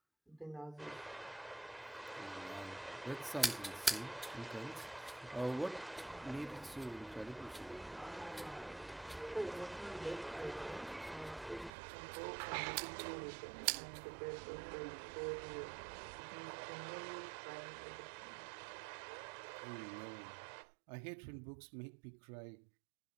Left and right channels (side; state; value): left; drops out; at 11.7 s